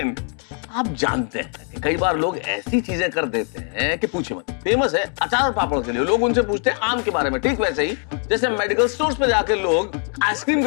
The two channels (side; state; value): right; quieter; 39.9 dB